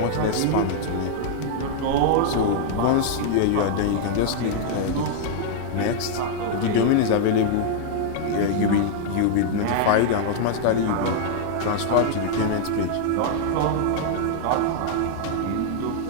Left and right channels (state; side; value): different; both; correlation -0.01